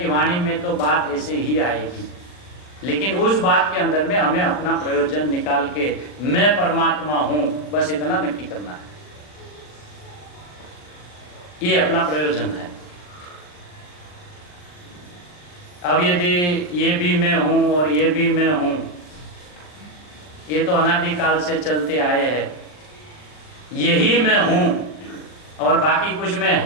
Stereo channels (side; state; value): right; late; 40 ms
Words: वाणी में तो बात ऐसे ही आएगी, लेकिन उस बात के अंदर में हमें अपना प्रयोजन निकाल के मैं परमात्मा हूं, बस इतना नक्की करना है। ये अपना प्रयोजन है। अब यदि ये भी मैं हूं और ये भी मैं हूं, ये तो अनादिकाल से चलते आए हैं। यही मैं हूं और बाकी कुछ मैं